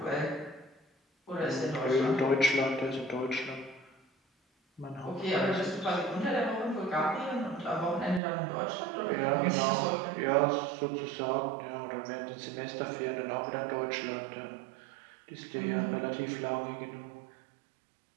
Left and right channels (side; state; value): left; drops out; at 8.2 s